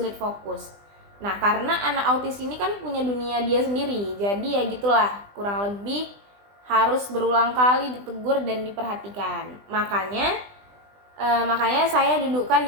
fokus. Nah, karena anak autis ini kan punya dunia dia sendiri, jadi ya gitulah, kurang lebih harus berulang kali ditegur dan diperhatikan. Makanya saya dudukkan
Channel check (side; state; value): left; late; 20 ms